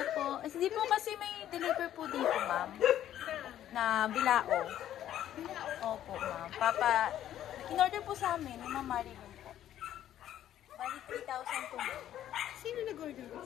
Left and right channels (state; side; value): quieter; right; 11.6 dB